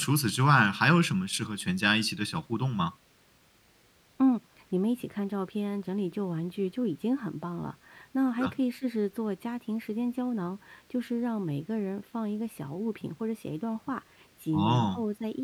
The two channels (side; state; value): both; identical; correlation 1.00